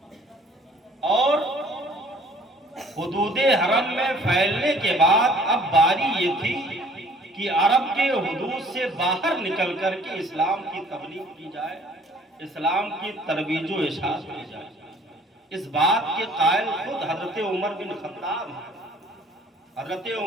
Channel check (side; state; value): both; normal; correlation 0.55